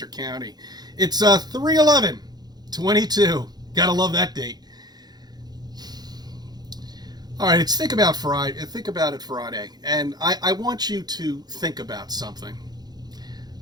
County. It's 3/11/22. Gotta love that date. All right, it's Think About Friday. Think About It Friday, and I want you to think about something.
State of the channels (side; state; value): left; late; 0.19 ms